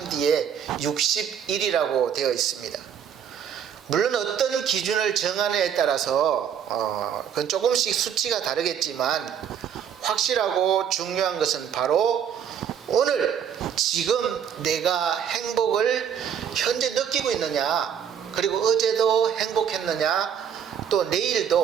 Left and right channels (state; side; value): quieter; left; 8.4 dB